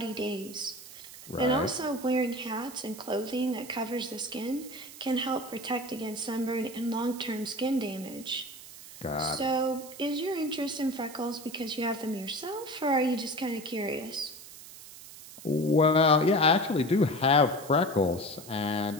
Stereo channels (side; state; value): right; noise; hiss, 16 dB below the sound